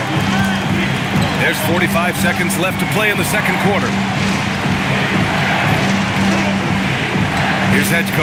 There's 45 seconds left to play in the second quarter. Here's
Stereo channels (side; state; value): both; identical; correlation 1.00